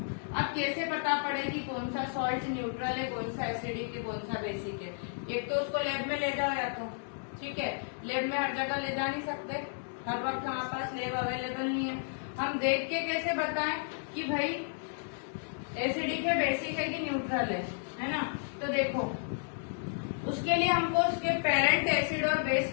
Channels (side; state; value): right; silent; digital silence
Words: अब कैसे पता पड़े कि कौन सा सॉल्ट न्यूट्रल है, कौन सा एसिडिक है, कौन सा बेसिक है। एक तो उसको लैब में ले जाओ या तो, ठीक है, लैब में हर जगह ले जा नहीं सकते, हर वक्त हमारे पास लैब अवेलेबल नहीं है। हम देख के कैसे बताएं कि भाई एसिडिक है, बेसिक है कि न्यूट्रल है ना। तो देखो उसके लिए हमको उसके पेरेंट एसिड और बेस